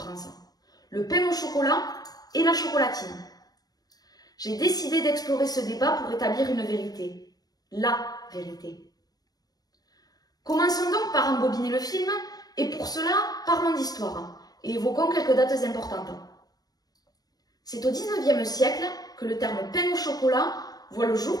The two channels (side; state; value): right; late; 0.19 ms